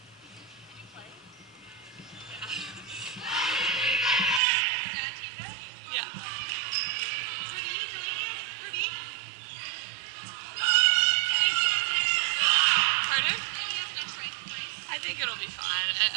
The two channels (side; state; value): left; drops out; at 4.4 s